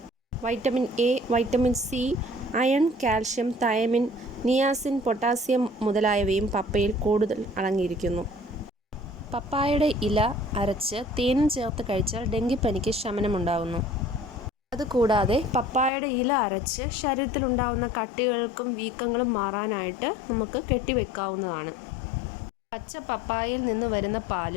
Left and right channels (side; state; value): right; drops out; at 15.9 s